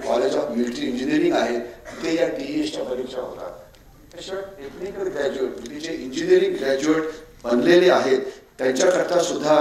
ऑफ मिलिटरी इंजिनिअरिंग आहे, तिथे या TSच्या परीक्षा होतात. त्याशिवाय टेक्निकल ग्रॅज्युएट म्हणजे जे इंजिनिअरिंग ग्रॅज्युएट बनलेले आहेत त्यांच्याकरता सुद्धा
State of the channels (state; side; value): identical; both; correlation 1.00